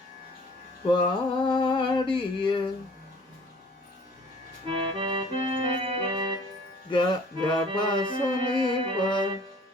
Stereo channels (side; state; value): both; normal; correlation 0.52